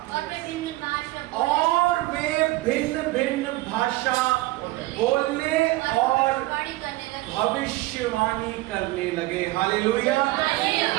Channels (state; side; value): quieter; left; 19.4 dB